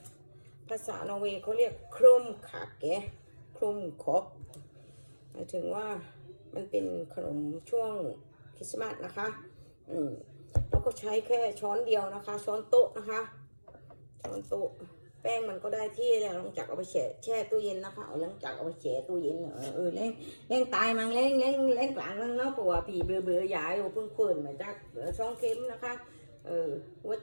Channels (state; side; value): inverted; both; correlation -1.00